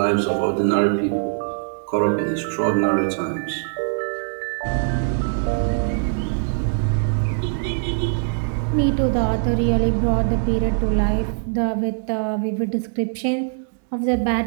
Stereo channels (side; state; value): left; silent; digital silence